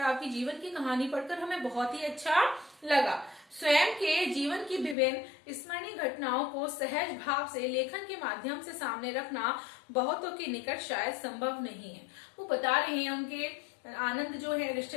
जीवन की कहानी पढ़कर हमें बहुत ही अच्छा लगा। स्वयं के जीवन की विभिन्न स्मरणीय घटनाओं को सहज भाव से लेखन के माध्यम से सामने रखना बहुतों के निकट शायद संभव नहीं है। वो बता रहे हैं उनके आनंद जो है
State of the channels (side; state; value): right; drops out; at 5.0 s